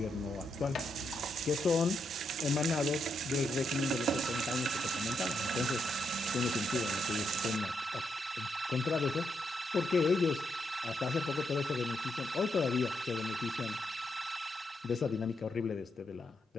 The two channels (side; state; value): both; normal; correlation 0.80